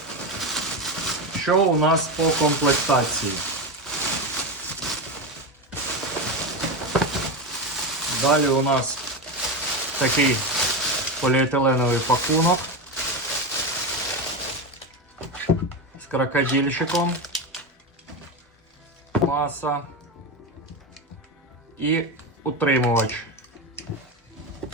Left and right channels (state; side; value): normal; both; correlation 0.17